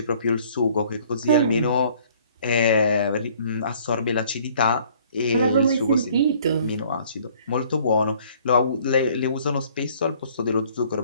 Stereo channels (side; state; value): both; inverted; correlation -0.58